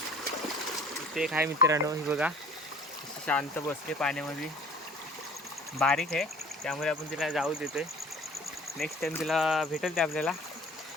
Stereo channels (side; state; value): both; normal; correlation 0.49